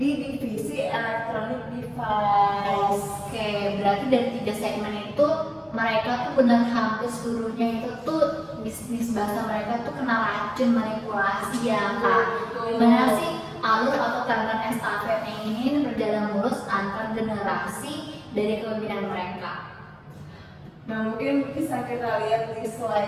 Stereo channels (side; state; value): both; identical; correlation 1.00